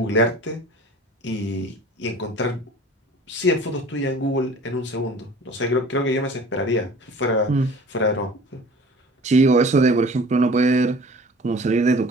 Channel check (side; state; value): both; normal; correlation 0.45